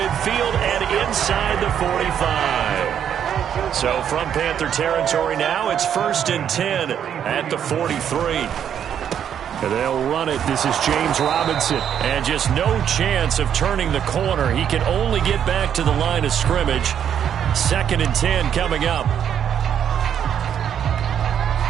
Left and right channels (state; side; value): quieter; left; 9.0 dB